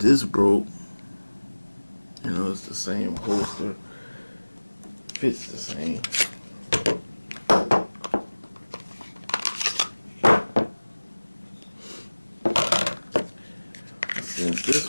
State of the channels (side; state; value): both; inverted; correlation -1.00